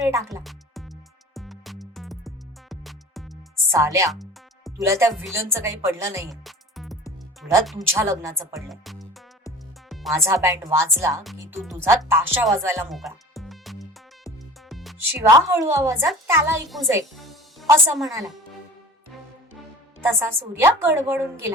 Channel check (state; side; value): normal; both; correlation 0.41